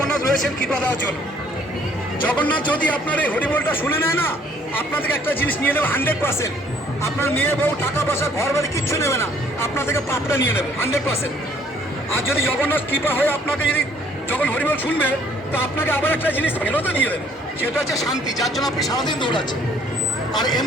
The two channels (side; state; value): both; normal; correlation 0.61